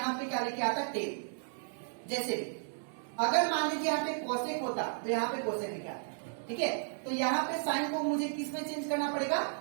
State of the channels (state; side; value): silent; left; digital silence